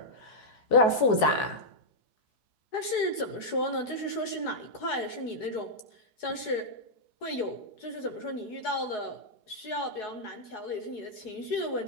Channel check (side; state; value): right; late; 4.7 ms